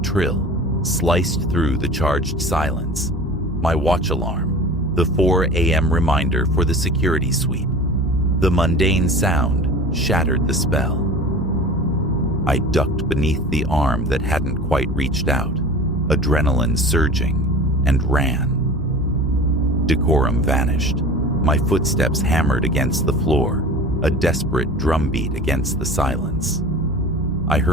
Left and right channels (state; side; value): normal; both; correlation 0.38